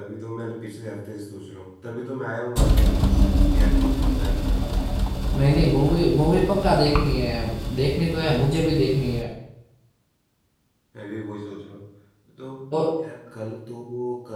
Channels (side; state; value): both; identical; correlation 1.00